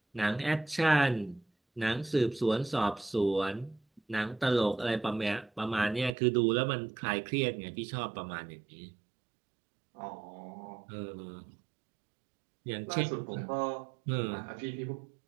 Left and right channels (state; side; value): drops out; left; at 6.2 s